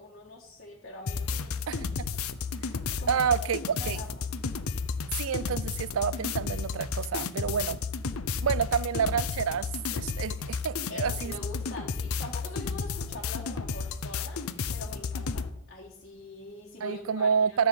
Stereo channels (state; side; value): normal; both; correlation -0.11